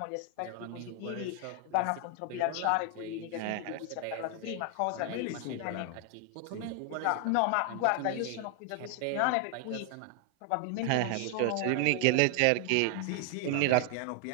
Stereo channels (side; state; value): both; different; correlation 0.00